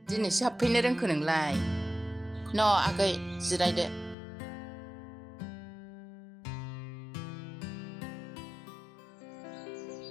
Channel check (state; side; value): drops out; right; at 4.2 s